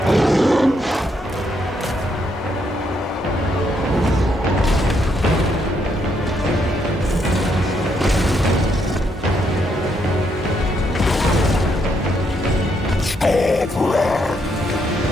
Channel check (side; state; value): both; normal; correlation 0.75